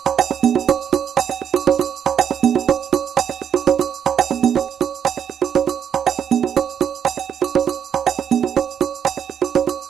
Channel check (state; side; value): quieter; left; 8.5 dB